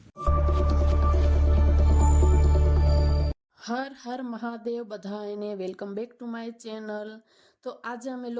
હર હર મહાદેવ બધાને welcome back to my channel. તો આજે અમે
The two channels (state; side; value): identical; both; correlation 1.00